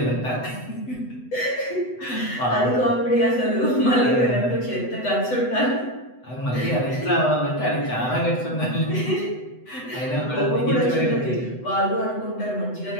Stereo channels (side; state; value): right; late; 8.0 ms